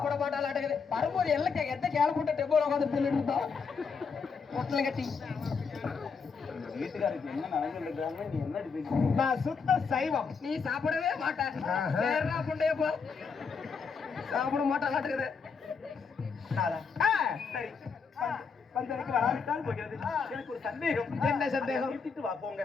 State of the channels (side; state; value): right; quieter; 5.5 dB